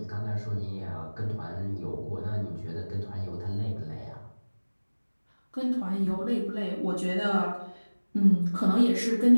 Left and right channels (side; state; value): both; inverted; correlation -1.00